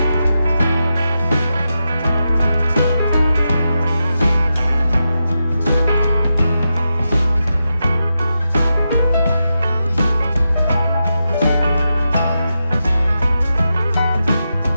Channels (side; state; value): both; inverted; correlation -0.88